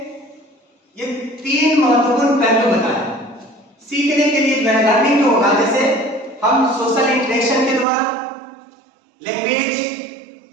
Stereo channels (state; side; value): drops out; left; at 7.9 s